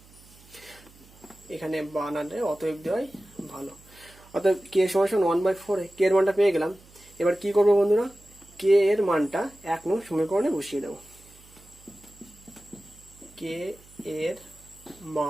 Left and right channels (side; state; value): right; noise; hum, 25 dB below the sound